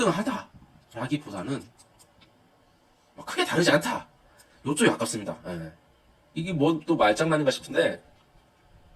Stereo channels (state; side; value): identical; both; correlation 1.00